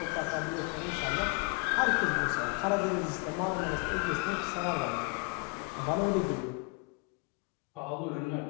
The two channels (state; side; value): quieter; right; 32.8 dB